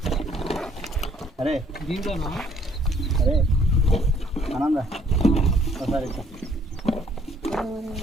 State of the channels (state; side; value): normal; both; correlation 0.63